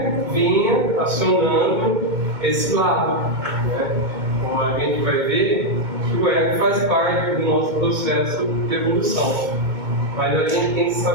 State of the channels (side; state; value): left; late; 2.2 ms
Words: vinha acionando esse lado. Né? Então, a gente vai ver que o ego faz parte do nosso processo de evolução. Mas a gente tem que